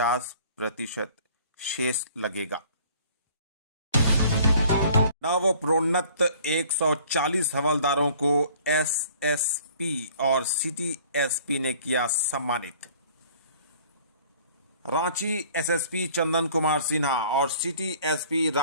शेष लगेगा। नवप्रोन्नत 140 हवलदारों को एसएसपी और सिटी एसपी ने किया सम्मानित। रांची एसएसपी चंदन कुमार सिन्हा और सिटी एसपी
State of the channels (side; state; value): both; inverted; correlation -0.53